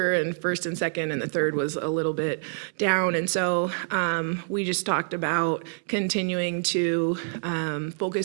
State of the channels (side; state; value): left; silent; digital silence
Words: and first and second, and the third was a little bit down. And so we just talked about continuing to